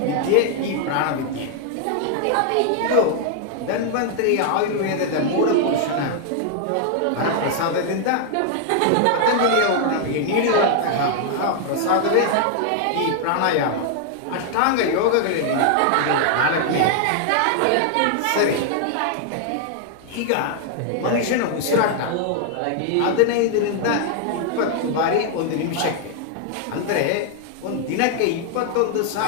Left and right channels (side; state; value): both; different; correlation 0.00